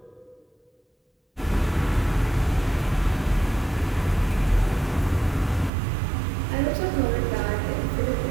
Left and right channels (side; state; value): left; drops out; at 5.7 s